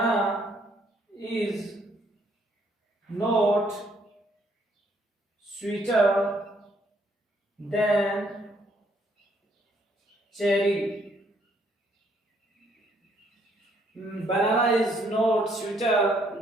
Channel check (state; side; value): normal; both; correlation 0.68